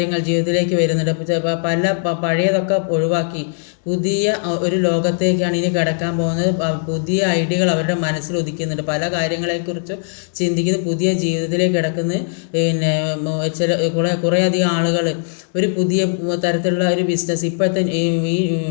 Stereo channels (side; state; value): right; silent; digital silence